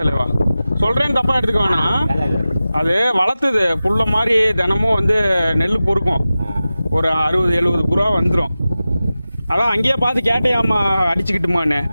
தலைவா, சொல்றேன்னு தப்பா எடுத்துக்க வேணாம். அது வளர்த்துது புல்ல மாதிரி தினமும் வந்து நெல் பொறுக்கும். ஒரு 60-70 புறா வந்துடும். அதான் அங்கேயே பார்த்து கேட்டேயாம்மா அடிச்சுக்கிட்டுமான்னு.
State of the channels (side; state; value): both; inverted; correlation -0.95